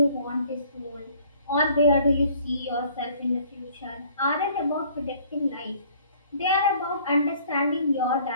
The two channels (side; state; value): both; inverted; correlation -0.57